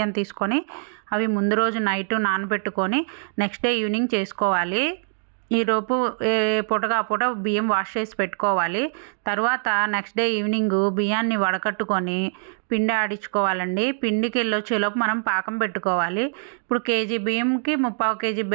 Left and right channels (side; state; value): left; silent; 63 dB below the other